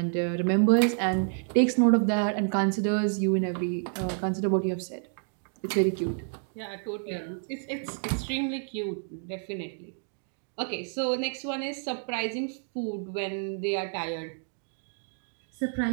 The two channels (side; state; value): left; silent; 58 dB below the other